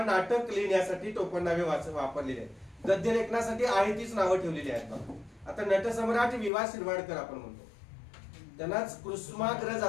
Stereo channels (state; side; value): drops out; right; at 6.5 s